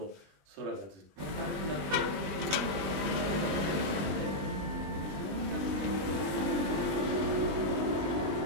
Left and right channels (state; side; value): late; left; 20 ms